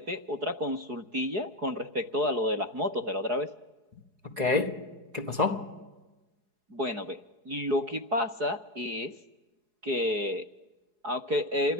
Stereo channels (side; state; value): left; late; 4.8 ms